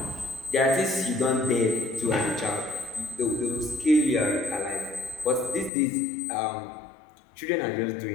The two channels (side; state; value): right; drops out; at 5.7 s